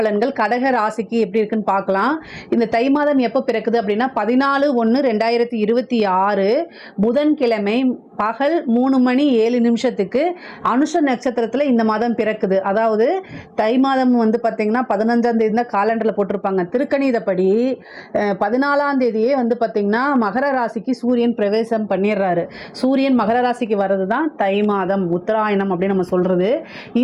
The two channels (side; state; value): both; identical; correlation 1.00